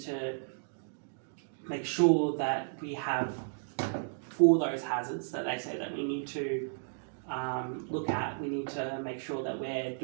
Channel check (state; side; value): silent; left; digital silence